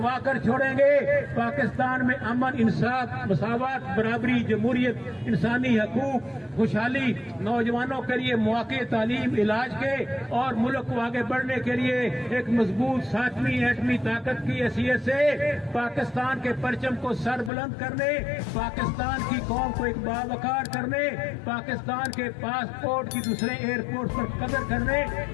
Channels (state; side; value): drops out; right; at 17.5 s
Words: کر چھوڑیں گے. پاکستان میں امن، انصاف، مساوات، برابری، جمہوریت، انسانی حقوق، خوشحالی، نوجوانوں کے لیے مواقع، تعلیم، علاج کے اور ملک کو آگے بڑھنے کے لیے ایک مضبوط 7ویں ایٹمی طاقت کی حیثیت سے پاکستان کے پرچم کو سر بلند کرنے، پاکستان کی قوم کو ایک باوقار کرنے، پاکستان کے پاسپورٹ کی دوسرے ایئرپورٹ پر قدر کرنے،